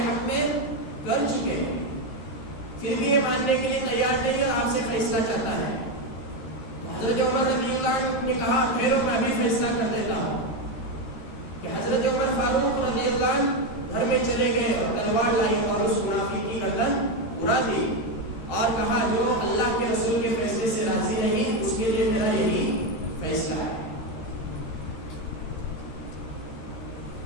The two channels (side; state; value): right; late; 13 ms